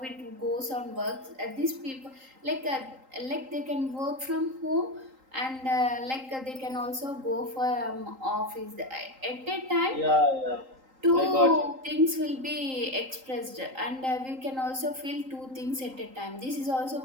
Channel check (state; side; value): late; left; 3.8 ms